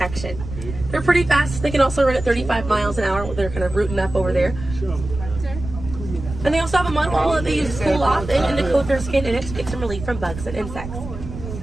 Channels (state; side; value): noise; right; rumble, 10 dB below the sound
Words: They're pretty fast. They can also run at 35 miles an hour. They're kind of rooting up over there. And they also have a mud hole that they use to cool off and to coat their skin in it to get some relief from bugs and insects.